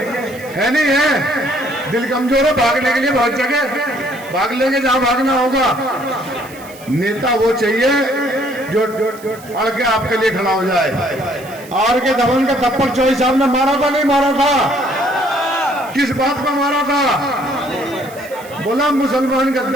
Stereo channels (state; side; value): noise; right; hiss, 20 dB below the sound